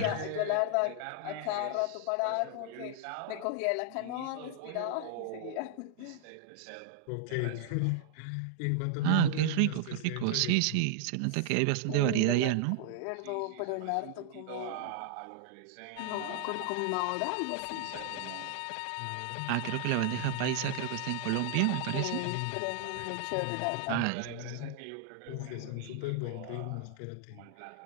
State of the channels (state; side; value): different; both; correlation 0.00